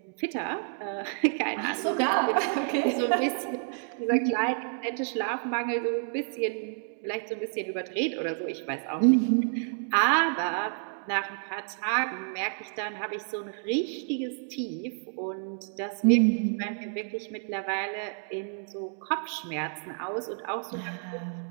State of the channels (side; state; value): left; silent; 58 dB below the other